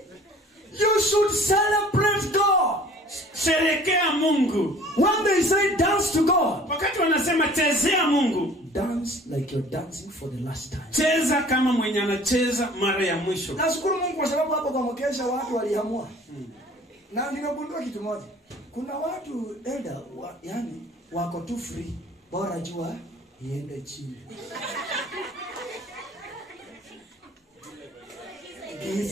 You should celebrate God. Sherekea Mungu. When they say dance to God, Wakati wanasema chezea Mungu, dance like you're dancing for the last time. cheza kama mwenye anacheza mara ya mwisho. Nashukuru Mungu kwa sababu hapo kwa mkesha watu waliamua. Na nimegundua kitu moja. Kuna watu yani wako tu free. Bora jua iende chini.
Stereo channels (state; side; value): normal; both; correlation 0.49